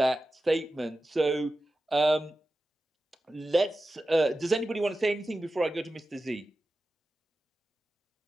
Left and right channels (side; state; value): both; normal; correlation 0.94